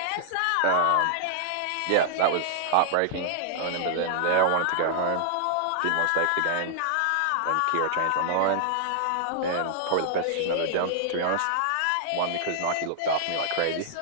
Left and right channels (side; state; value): both; different; correlation -0.01